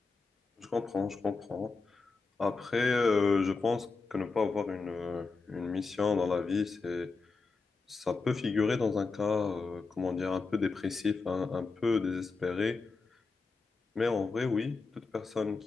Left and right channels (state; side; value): quieter; right; 4.2 dB